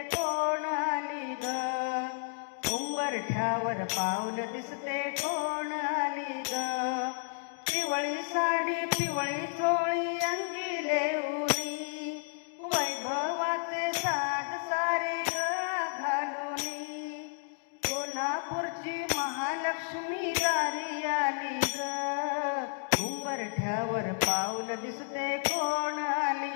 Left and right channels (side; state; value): right; silent; 57 dB below the other